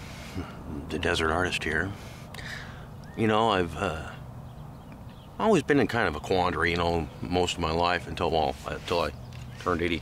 the Desert Artist here. You know, I've always been in kind of a quandary, most of my life until I turned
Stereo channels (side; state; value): both; identical; correlation 1.00